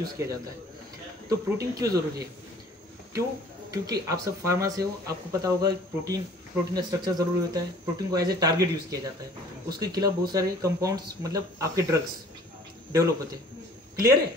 किया जाता है। तो प्रोटीन क्यों ज़रूरी है? क्यों? क्योंकि आप सब फार्मा से हो, आपको पता होगा प्रोटीन का स्ट्रक्चर ज़रूरी होता है। प्रोटीन को एज ए टारगेट यूज़ किया जाता है, उसके खिलाफ बहुत सारे कंपाउंड्स मतलब आपके ड्रग्स डेवलप होते हैं। क्लियर है?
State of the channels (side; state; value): both; normal; correlation 0.51